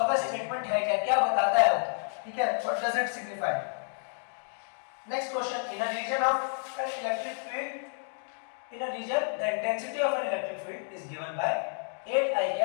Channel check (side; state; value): right; silent; 58 dB below the other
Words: का स्टेटमेंट है क्या, क्या बताता है वो, ठीक है, what does it signify. Next question, in a region of an electric field, in a region the intensity of an electric field is given by 8 I